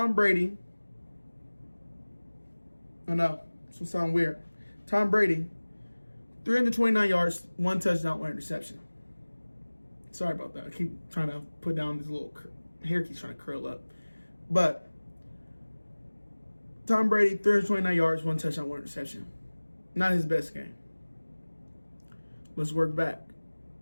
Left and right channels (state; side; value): inverted; both; correlation -1.00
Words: Brady, I know, this will sound weird. Tom Brady, 329 yards, 1 touchdown, 1 interception. Sorry about that. I keep trying to put down this little hair keeps trying to curl up. But Tom Brady, 329 yards, 1 touchdown, 1 interception. Not his best game. Let's work back.